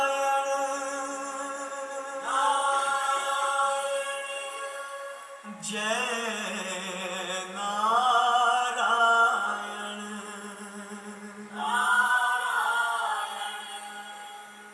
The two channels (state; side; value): identical; both; correlation 1.00